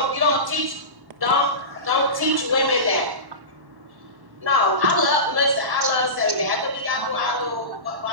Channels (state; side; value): late; left; 1.1 ms